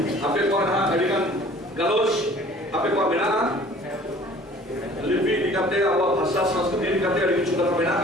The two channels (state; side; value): normal; both; correlation 0.50